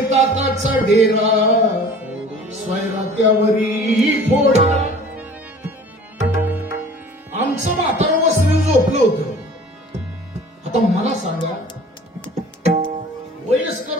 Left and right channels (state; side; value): normal; both; correlation 0.46